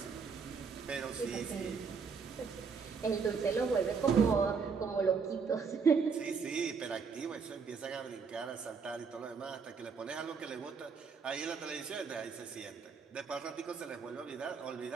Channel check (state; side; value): quieter; left; 5.5 dB